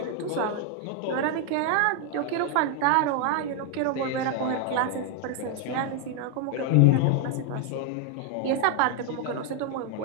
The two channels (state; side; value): different; both; correlation 0.01